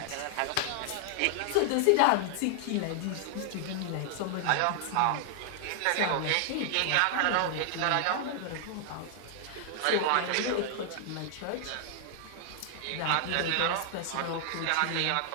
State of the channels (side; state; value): both; different; correlation 0.00